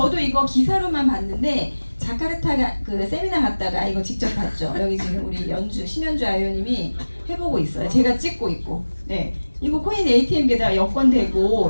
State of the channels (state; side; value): inverted; both; correlation -1.00